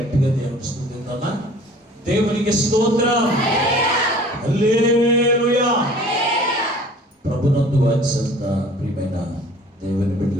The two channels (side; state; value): both; normal; correlation 0.49